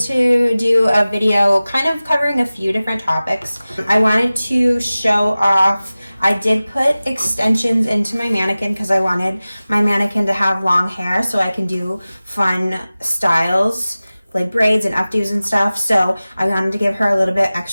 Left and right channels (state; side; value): inverted; both; correlation -0.97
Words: do a video kind of covering a few different topics. I wanted to show off, I did put extensions into my mannequin because I wanted my mannequin to have long hair so I can do fun styles like braids and updos and stuff. So I wanted to give her a little bit